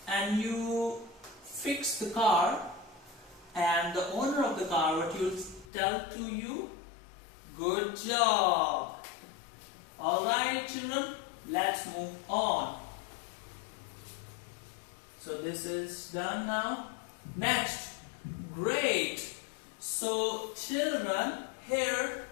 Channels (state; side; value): drops out; right; at 5.7 s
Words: and you fix the car, and the owner of the car, what you tell to you? Good job. Alright children, let's move on. So this is done now. Next, great. So children, here